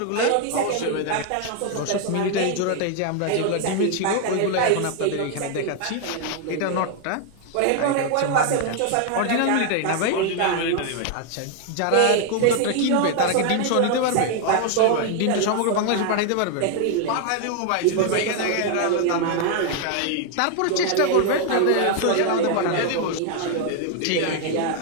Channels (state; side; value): different; both; correlation 0.00